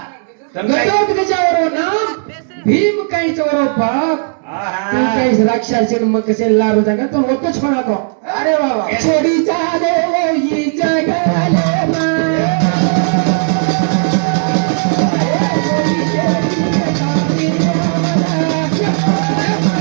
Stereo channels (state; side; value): silent; left; 65 dB below the other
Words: गटत गजा ओरो नाम भीम काहीच ओरो बाप तू काही राक्षसी मग कसे लारू जागा तो वक्त छोरा तो अरे बाबा छोडी चाले ही जगाले मा